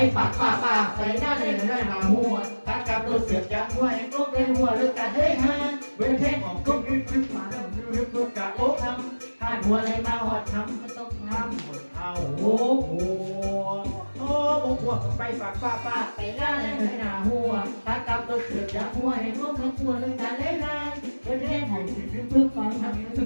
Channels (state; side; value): inverted; both; correlation -1.00